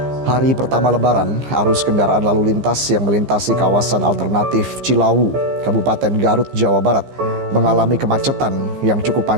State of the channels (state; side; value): late; left; 15 ms